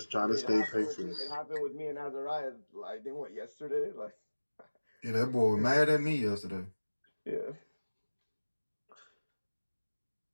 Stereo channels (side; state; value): both; inverted; correlation -1.00